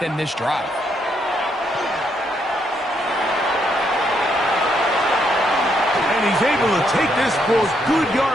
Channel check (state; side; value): normal; both; correlation 0.75